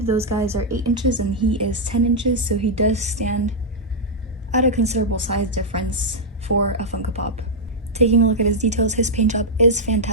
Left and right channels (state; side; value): normal; both; correlation -0.05